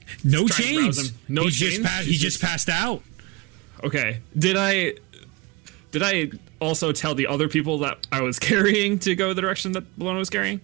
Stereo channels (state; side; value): quieter; left; 25.6 dB